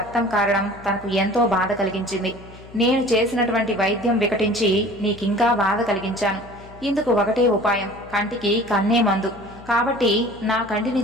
కారడం తనకు ఎంతో బాధ కలిగించింది. నేను చేసినటువంటి వైద్యం వికటించి నీకింకా బాధ కలిగించాను. ఇందుకు ఒకటే ఉపాయం, కంటికి కన్నే మందు. కాబట్టి నా కంటిని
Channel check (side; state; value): left; noise; hum, 20 dB below the sound